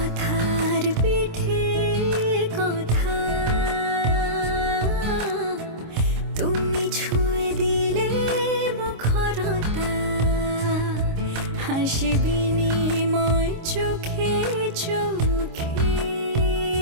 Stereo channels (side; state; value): left; late; 26 ms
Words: পিঠে কথা তুমি ছুঁয়ে দিলে মুখরতা, হাসি বিনিময় চোখে চোখে,